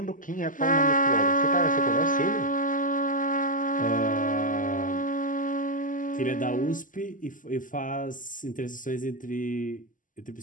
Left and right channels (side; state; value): right; late; 0.38 ms